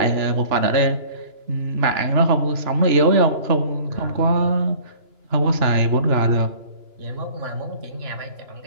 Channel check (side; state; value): left; late; 2.9 ms